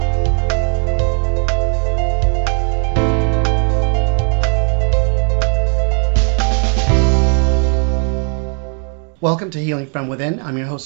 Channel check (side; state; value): left; quieter; 38.9 dB